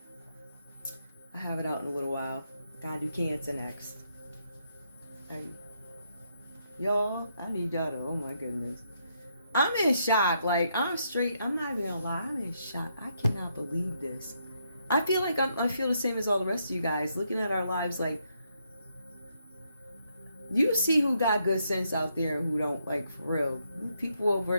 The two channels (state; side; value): inverted; both; correlation -0.77